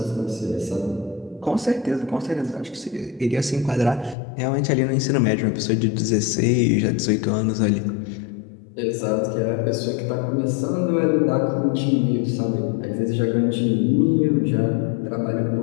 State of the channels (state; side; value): drops out; right; at 4.2 s